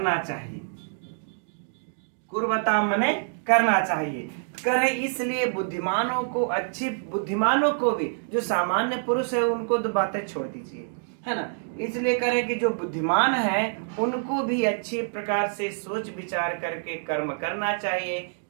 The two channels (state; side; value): silent; left; digital silence